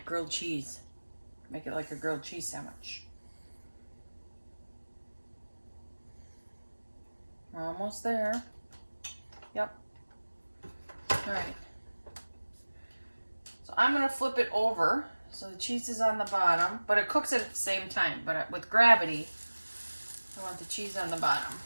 grilled cheese. Make it like a grilled cheese sandwich. We're almost there. Yep. Alright. So I'm going to flip it over so the cheese is on the bottom, but it cooks it at the same time. But with gravity, I want the cheese on the bottom.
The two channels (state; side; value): inverted; both; correlation -1.00